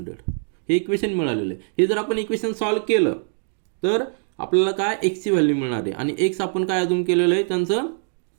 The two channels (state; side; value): silent; left; 62 dB below the other